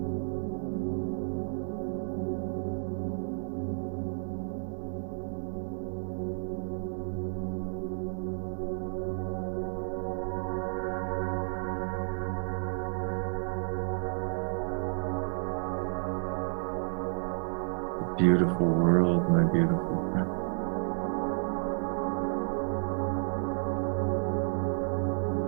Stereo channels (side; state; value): left; silent; 57 dB below the other